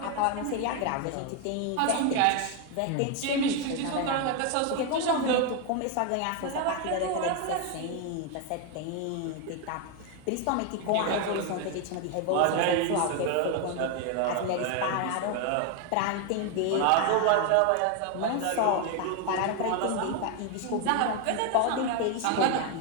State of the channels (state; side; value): different; both; correlation 0.01